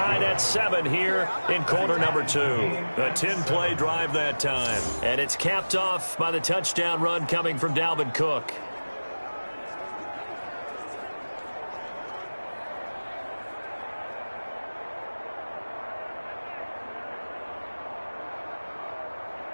at 7 here in quarter number 2. A 10-play drive that time. And it's capped off by the touchdown run coming from Dalvin Cook.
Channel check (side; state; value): both; inverted; correlation -1.00